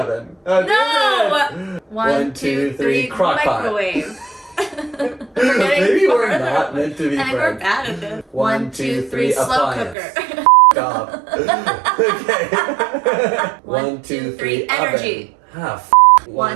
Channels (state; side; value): drops out; left; at 10.0 s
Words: Oh, No! 1, 2, 3, crock pot. microwave. Maybe we're not meant to be friends. friends. We're bad at this. 1, 2, 3, slow appliance. cooker. Off. Okay. 1, 2, 3, energy. Ah,